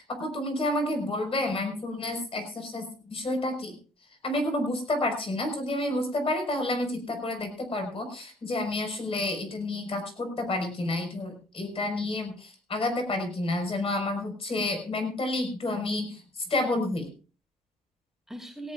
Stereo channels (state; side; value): normal; both; correlation 0.57